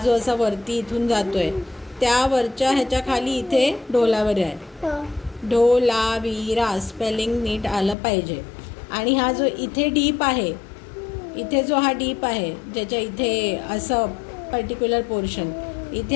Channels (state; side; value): drops out; right; at 8.0 s